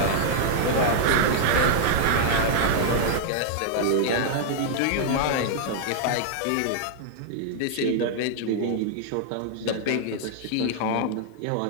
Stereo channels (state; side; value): different; both; correlation -0.01